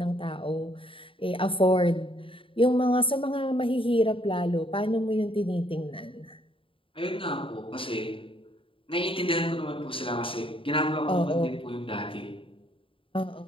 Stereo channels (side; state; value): right; late; 0.26 ms